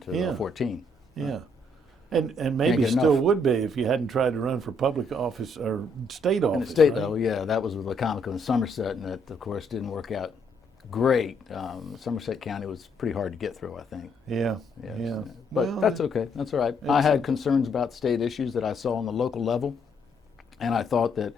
14. Yeah. And maybe still would be if you hadn't tried to run for public office or state office. In the state right? level, yeah, that was with Wicomico and Somerset, and that, of course, didn't work out great. Somerset County was pretty hard to get through, I think. Yeah. Yes. Yeah. But Well, that's okay. That's all right. I had concerns about state issues that I saw on the local level, and I thought that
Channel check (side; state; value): both; normal; correlation 0.71